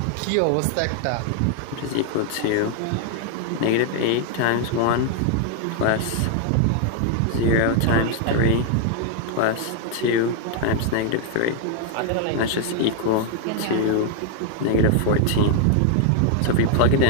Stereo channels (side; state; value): both; different; correlation 0.00